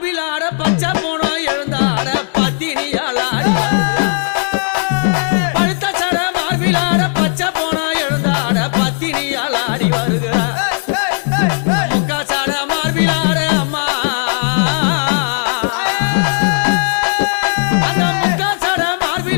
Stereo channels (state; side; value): silent; right; 56 dB below the other